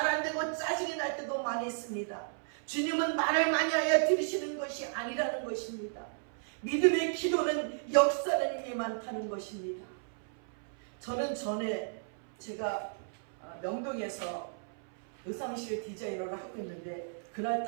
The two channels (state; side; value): silent; left; 55 dB below the other